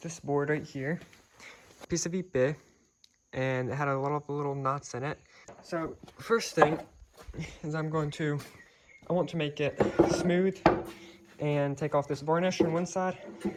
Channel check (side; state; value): both; identical; correlation 1.00